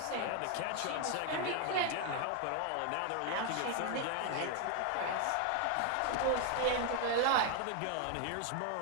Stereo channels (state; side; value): different; both; correlation 0.00